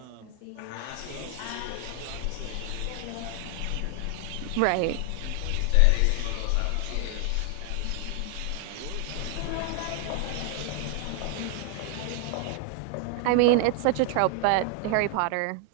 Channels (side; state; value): both; different; correlation 0.00